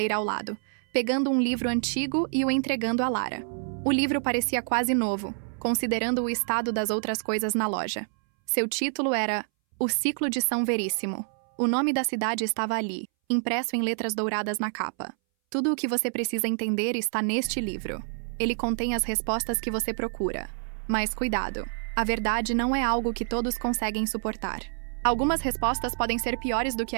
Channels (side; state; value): left; silent; 60 dB below the other